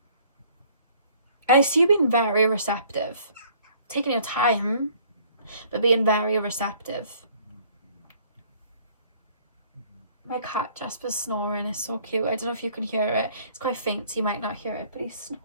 see you being very receptive. Taking your time, but being very receptive. My cat Jasper's snoring is so cute. I don't know if you can hear it. It's quite faint, so you might not hear it, but he's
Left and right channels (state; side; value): inverted; both; correlation -0.58